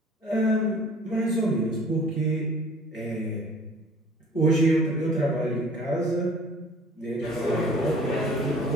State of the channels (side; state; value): both; normal; correlation 0.50